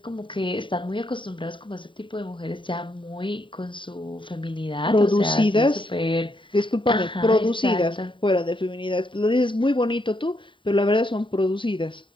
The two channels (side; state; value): right; late; 0.24 ms